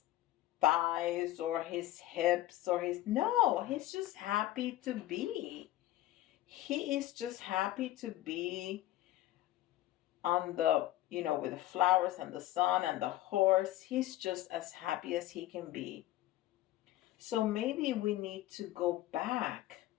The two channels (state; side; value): quieter; right; 15.2 dB